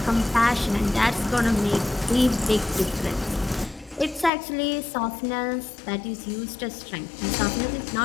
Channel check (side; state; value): right; drops out; at 4.3 s